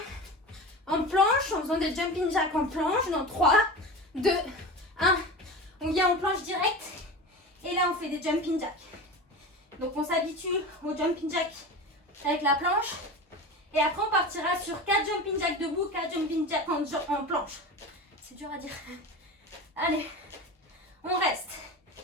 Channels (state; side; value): normal; both; correlation 0.30